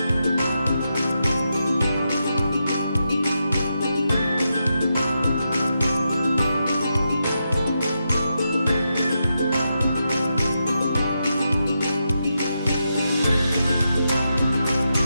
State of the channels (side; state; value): both; inverted; correlation -0.85